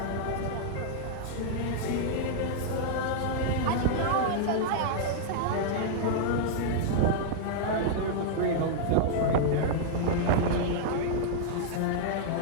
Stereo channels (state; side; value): different; both; correlation -0.01